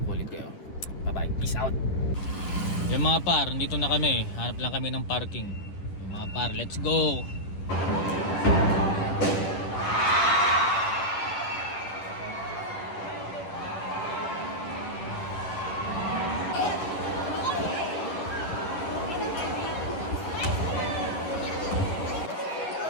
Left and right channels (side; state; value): right; late; 10 ms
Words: ko ulit kayo. Bye bye, peace out. Yung mga par, dito na kami, hanap lang kami ng parking. Yung mga par, let's go.